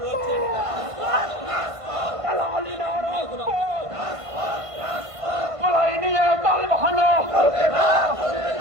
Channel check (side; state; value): left; late; 1.5 ms